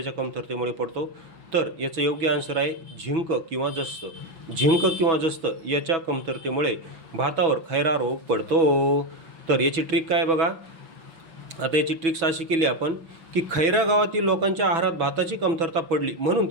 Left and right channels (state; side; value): late; left; 6.1 ms